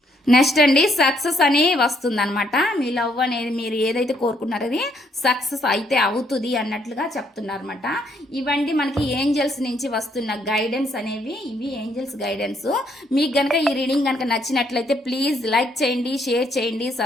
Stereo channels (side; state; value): both; normal; correlation 0.71